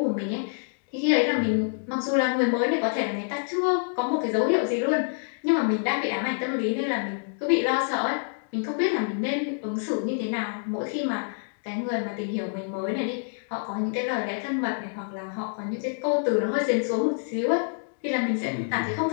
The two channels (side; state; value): right; silent; digital silence